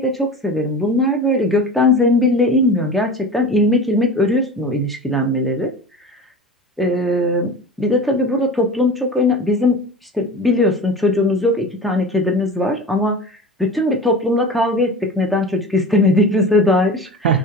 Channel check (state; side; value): normal; both; correlation 0.33